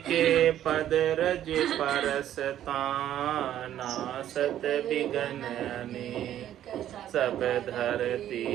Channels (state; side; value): quieter; left; 11.5 dB